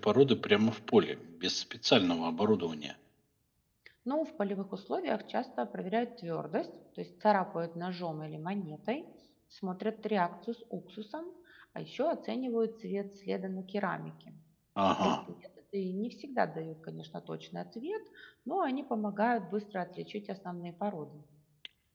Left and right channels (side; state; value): both; identical; correlation 1.00